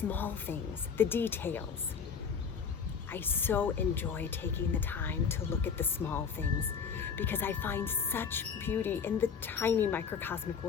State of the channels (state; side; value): quieter; right; 6.4 dB